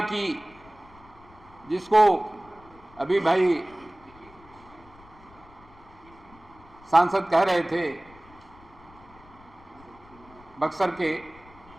की, जिसको अभी भाई सांसद कह रहे थे बक्सर के,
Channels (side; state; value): left; noise; rumble, 24 dB below the sound